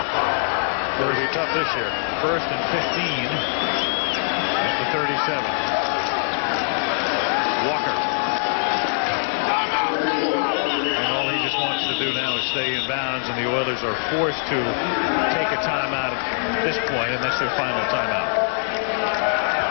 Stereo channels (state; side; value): silent; right; digital silence